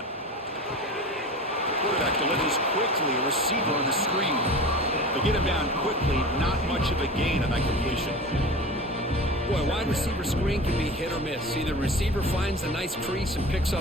Quarterback delivers quickly, a receiver on the screen. They get him down quickly, not much of a gain on that completion. Boy, wide receiver screen can be hit or miss. Either receiver finds a nice crease and picks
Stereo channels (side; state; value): both; normal; correlation 0.34